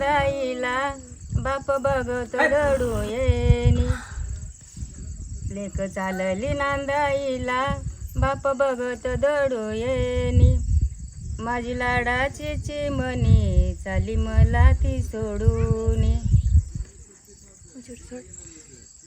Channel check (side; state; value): both; identical; correlation 1.00